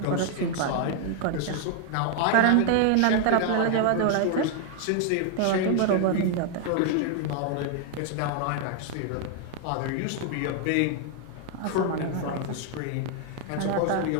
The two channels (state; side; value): different; both; correlation 0.00